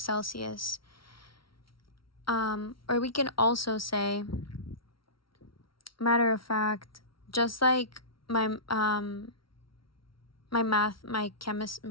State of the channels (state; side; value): late; right; 0.74 ms